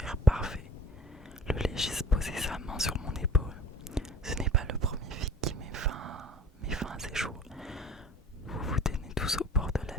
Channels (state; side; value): normal; both; correlation 0.47